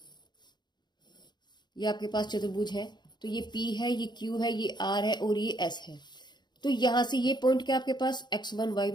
ये आपके पास चतुर्भुज है, तो ये P है, ये Q है, ये R है और ये S है। तो यहां से ये पॉइंट क्या आपके पास x1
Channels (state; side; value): late; right; 0.21 ms